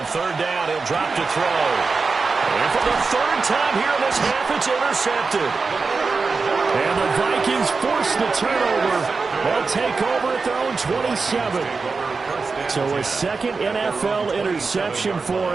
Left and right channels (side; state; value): left; quieter; 4.4 dB